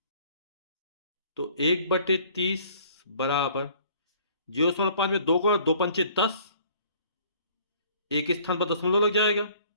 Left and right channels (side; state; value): both; inverted; correlation -0.55